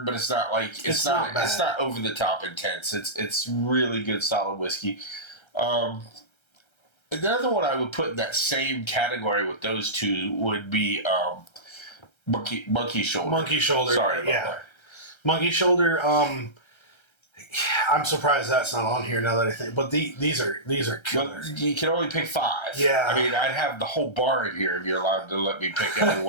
but it's not like it's not over the top intense. It's really good, solid whiskey. Another one I would put in that same category with those two would be Monkey Shoulder. Monkey Shoulder. Sorry about that. Monkey Shoulder. I'm surprised that's not on here now that I think. But these are killer. Well, you can only pick 5. Yeah. I mean, I'd have the whole bar in here if you're allowed to let me pick every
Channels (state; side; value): late; right; 1.3 ms